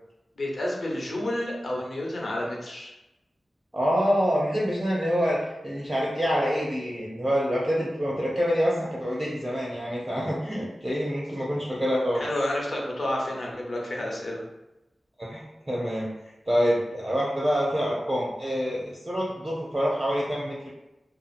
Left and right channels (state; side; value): normal; both; correlation 0.94